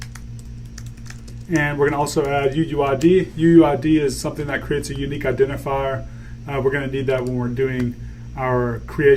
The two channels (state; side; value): identical; both; correlation 1.00